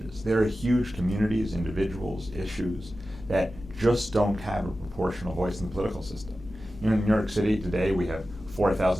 There are huge communities, individuals, issues that just don't have a proportional voice in the political system. In New York City today, we have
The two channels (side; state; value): both; normal; correlation 0.94